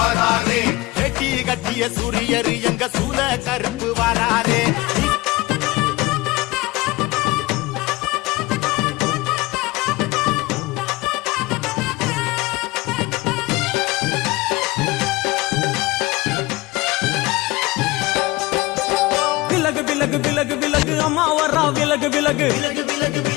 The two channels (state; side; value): quieter; right; 20.7 dB